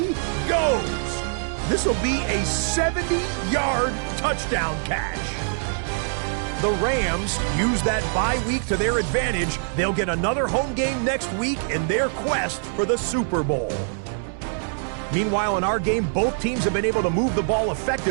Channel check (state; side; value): silent; left; 63 dB below the other